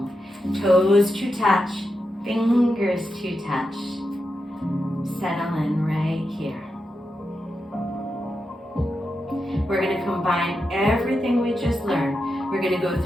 Toes to touch, fingers to touch. Settle in right here. We're going to combine everything we just learned. We're going to go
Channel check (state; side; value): normal; both; correlation 0.87